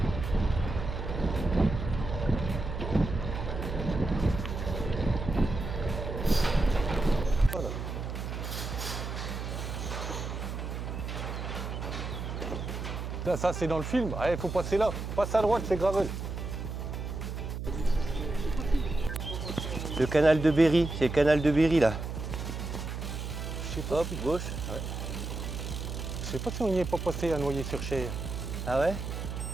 Voilà. Là, ça c'est dans le film. Il faut passer là. Passe à droite, c'est gravel. Le canal de Berry, c'est le canal de Berry là. Je sais pas. Hop, gauche. Ouais. Je sais pas si on n'y est pas passé à Noyer-sur-Cher. Ah ouais?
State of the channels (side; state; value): right; noise; hum, 5 dB below the sound